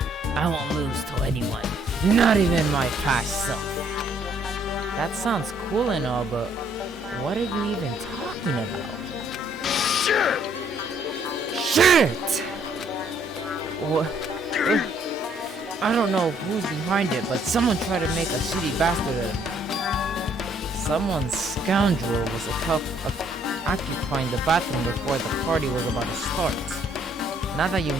I won't lose to anyone, not even my past self. That sounds cool and all, but what are you even talking about? Sure! Shit! What? I don't know who's behind it, but someone tried to make a shitty bastard out of me. Someone scoundrel was occupying the bathroom before the party was about to start. Now that you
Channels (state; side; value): normal; both; correlation 0.66